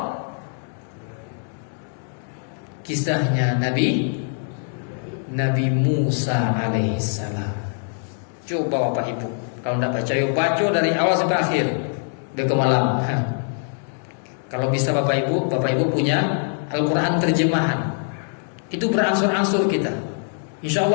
kisahnya Nabi Musa alaihissalam. Coba Bapak Ibu, kalau tidak baca, yuk baca dari awal sampai akhir, ke malam. Kalau bisa Bapak Ibu punya Al-Quran terjemahan, itu berangsur-angsur kita. Insya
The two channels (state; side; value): silent; right; 61 dB below the other